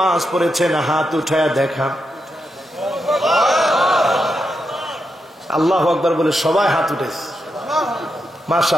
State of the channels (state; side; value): normal; both; correlation 0.85